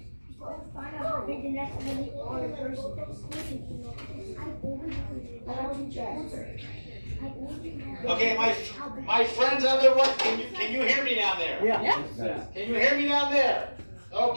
Okay, my friends on the right, can you hear me down there? Yeah. Can you hear me down there?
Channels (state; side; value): inverted; both; correlation -1.00